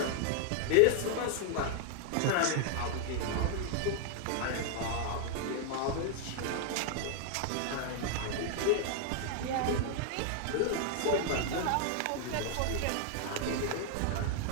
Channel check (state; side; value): different; both; correlation 0.00